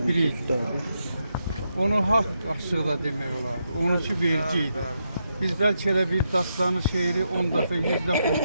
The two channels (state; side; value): inverted; both; correlation -0.82